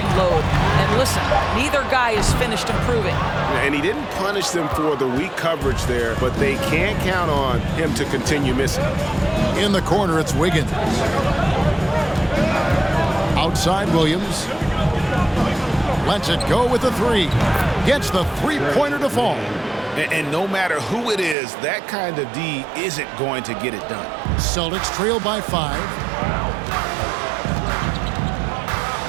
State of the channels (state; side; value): drops out; left; at 21.4 s